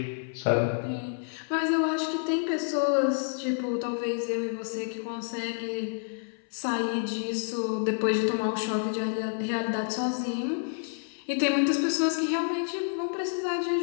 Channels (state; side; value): silent; right; 59 dB below the other